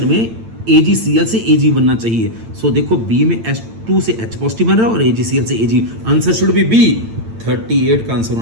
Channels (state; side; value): late; left; 8.9 ms